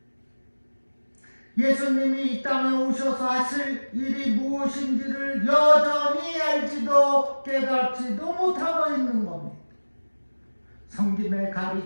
예수님이 이 땅에 오셔서 하실 일이 무엇인지를 여전히 알지도 깨닫지도 못하고 있는 겁니다. 성김의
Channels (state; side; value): inverted; both; correlation -1.00